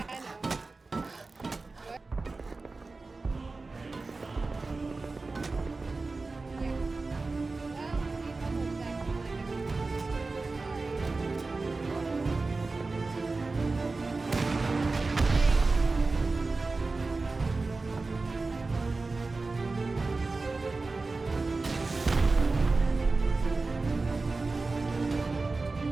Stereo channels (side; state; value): left; quieter; 3.7 dB